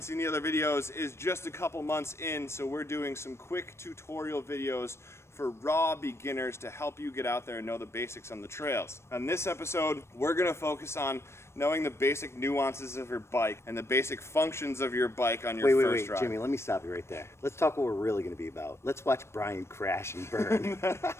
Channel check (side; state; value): right; late; 0.13 ms